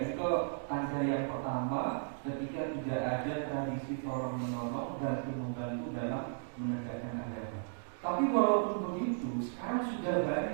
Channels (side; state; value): left; silent; digital silence